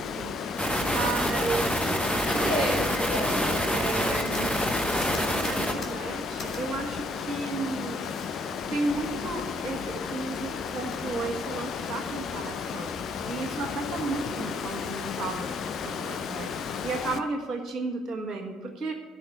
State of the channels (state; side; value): normal; both; correlation 0.68